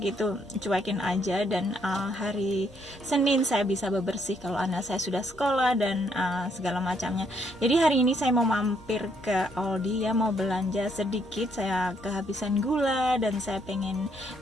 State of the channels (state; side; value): normal; both; correlation 0.71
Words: itu cuekin aja, dan hari Senin saya bisa bebersih kalau anak saya sudah sekolah dan segala macamnya. Jadi hari ini saya mau mampir ke Aldi ya, mau belanja sedikit. Saya kehabisan gula dan saya pengen